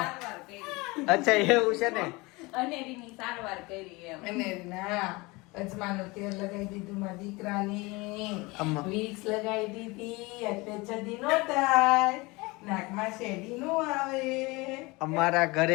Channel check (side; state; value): right; quieter; 24.0 dB